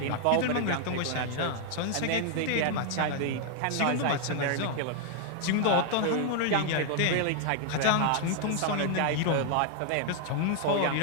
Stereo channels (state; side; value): different; both; correlation 0.00